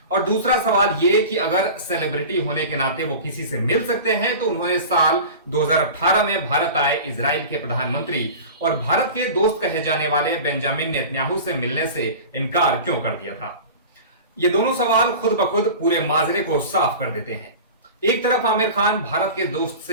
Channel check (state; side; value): inverted; both; correlation -0.35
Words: और दूसरा सवाल यह कि अगर सेलिब्रिटी होने के नाते वो किसी से मिल सकते हैं तो उन्होंने साल 2018 में भारत आए इजराइल के प्रधानमंत्री और भारत के दोस्त कहे जाने वाले बेंजामिन नेतन्याहू से मिलने से इनकार क्यों कर दिया था। ये दोनों सवाल खुद ब खुद पूरे माजरे को साफ कर देते हैं। एक तरफ आमिर खान भारत के दोस्त